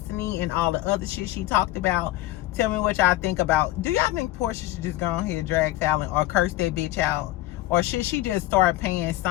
and all the other shit she talked about. Tell me what y'all think about. Do y'all think Porsha should just go on here and drag Falynn or curse that bitch out? Or should she just start paying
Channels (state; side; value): quieter; right; 16.4 dB